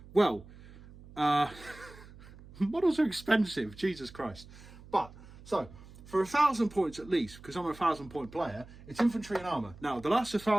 well, models are expensive, Jesus Christ. But, so, for 1,000 points at least, because I'm a 1,000 point player, it's infantry and armour. Now, the last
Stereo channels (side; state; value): right; noise; hum, 19 dB below the sound